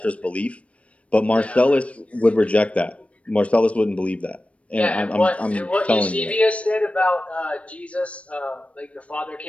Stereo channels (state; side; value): late; right; 0.063 ms